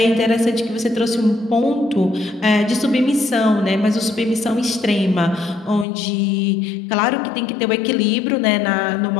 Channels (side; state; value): right; drops out; at 5.9 s